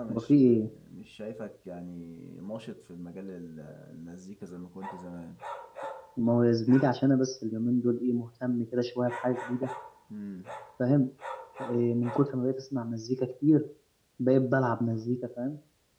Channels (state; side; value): identical; both; correlation 1.00